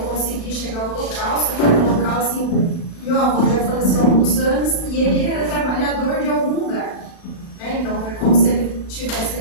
chegar ao local, só que no local, assim, meu avô já faleceu há alguns anos e ele era trabalhador de algum lugar. Né? Então, foi como se ele estivesse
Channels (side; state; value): right; late; 36 ms